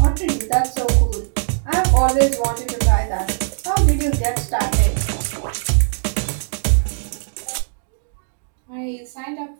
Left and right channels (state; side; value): silent; left; digital silence